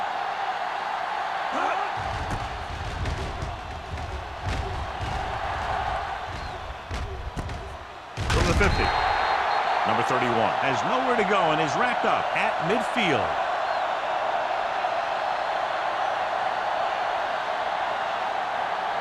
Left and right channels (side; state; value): both; identical; correlation 1.00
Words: From the 50. Number 31 has nowhere to go and is wrapped up at midfield.